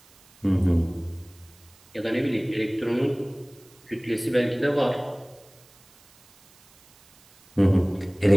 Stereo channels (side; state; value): right; noise; hiss, 28 dB below the sound